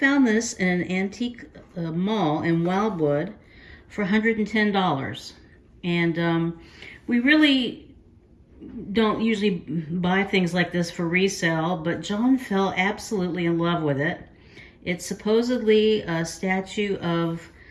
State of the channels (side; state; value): both; identical; correlation 1.00